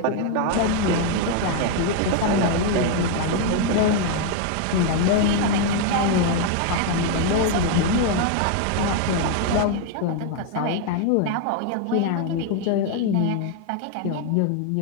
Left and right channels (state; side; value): different; both; correlation 0.01